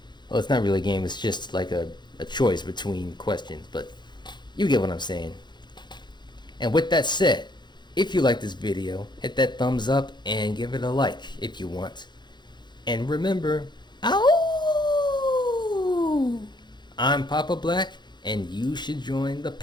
Well, it's not really a game, it's just like a choice between questions, but you get what I'm saying. And with that said, if you like this video, hit that thumbs up and give it a like if you want. And remember, ow! I'm Papa Black, and you should join the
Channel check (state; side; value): late; right; 0.21 ms